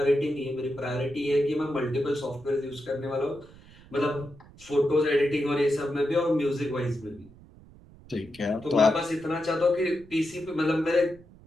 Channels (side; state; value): right; noise; rumble, 23 dB below the sound